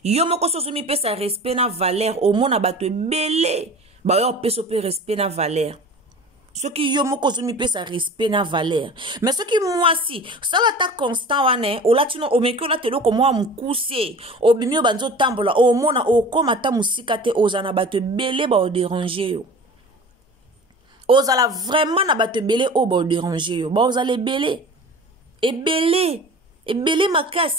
Yo moko soso mi pesa respect na valeur au mona bato ebele. Ba yo peso pe respect na valeur. Ce qui yo moko zo mi pesa respect na valeur. Mais ce qui moi si, ça va ta constant wane, o latino o meki o latelo ko moi mukuse, o bimio banzo tambola, o mona o koma ta musika te ozana bato ebele ba o déranger yo. Ozala vraiment na bato ebele o ba o déranger yo. Ba ozala ebele. Ebele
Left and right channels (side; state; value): both; normal; correlation 0.39